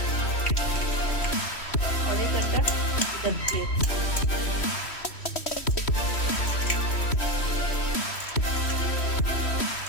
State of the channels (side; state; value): right; late; 3.1 ms